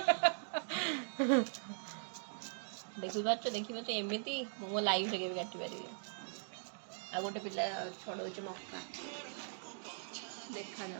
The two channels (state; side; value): silent; left; digital silence